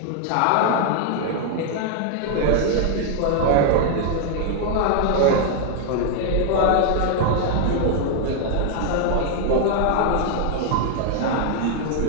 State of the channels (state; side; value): different; both; correlation 0.00